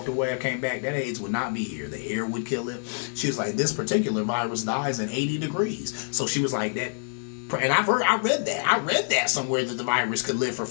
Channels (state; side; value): silent; right; 61 dB below the other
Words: away, I came back, that AIDS would not be here. The air would kill it. She was like, this particular virus dies in 80 degrees. So she was like, that. And I read that somewhere that the virus could live for